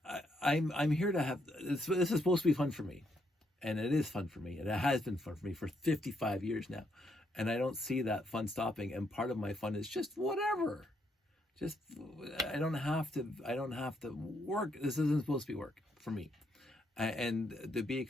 I'm here to have this is supposed to be fun for me, and it is fun for me, and it has been fun for me for 55 years now, and I don't see that fun stopping. And part of my fun is just whatever, just I don't have to work. This isn't supposed to be work for me, and to be a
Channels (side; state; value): both; normal; correlation 0.75